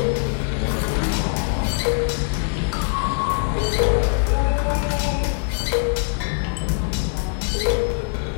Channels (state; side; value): silent; right; 64 dB below the other